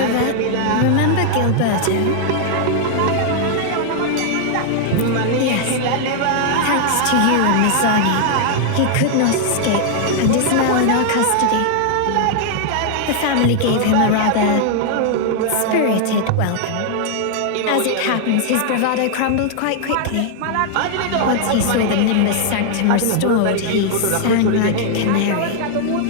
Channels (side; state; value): both; different; correlation 0.00